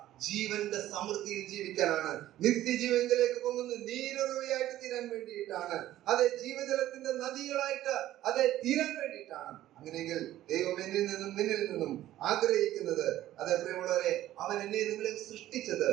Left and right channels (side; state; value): left; quieter; 13.8 dB